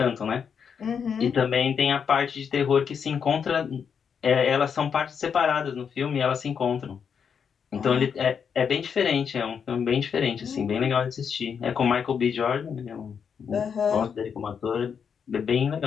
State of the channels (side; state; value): right; quieter; 6.9 dB